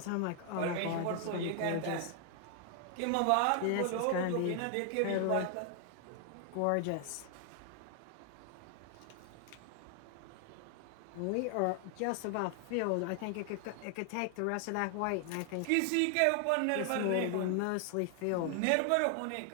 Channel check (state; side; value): different; both; correlation 0.00